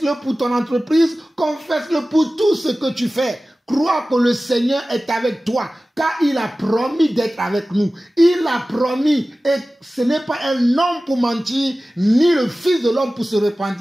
pour ton entreprise. Confesse-le pour tout ce que tu fais. Crois que le Seigneur est avec toi, car il a promis d'être avec nous. Il a promis, et ce n'est pas un homme pour mentir, ni le Fils de l'homme pour se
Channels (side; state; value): both; normal; correlation 0.96